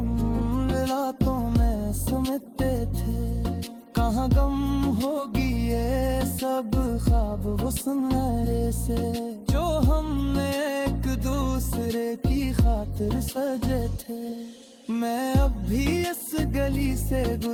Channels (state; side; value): identical; both; correlation 1.00